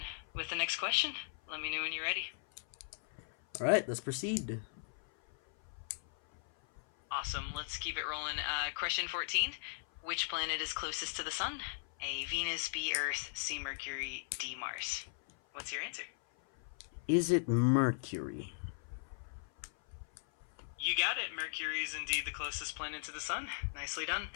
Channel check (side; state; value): right; silent; 52 dB below the other